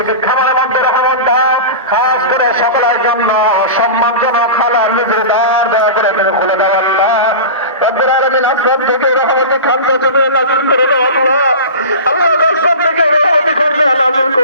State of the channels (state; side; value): inverted; both; correlation -0.30